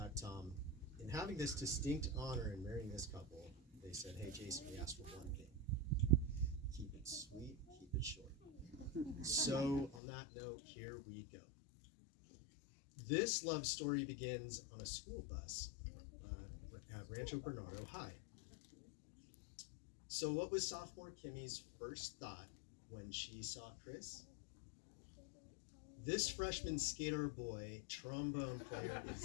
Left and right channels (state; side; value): drops out; right; at 10.0 s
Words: in having this distinct honor in marrying this couple, they said, "Hey Jason, we asked for one thing: keep it sweet, keep it short." So on that note, here we go. This love story begins on a school bus at Rancho Bernardo High. So what was sophomore Kimmy's first thought when she saw Chris? This freshman skater boy, trombone player,